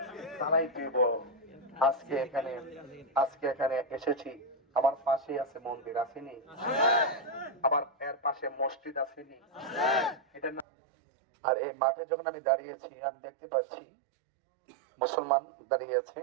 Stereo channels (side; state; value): left; drops out; at 10.7 s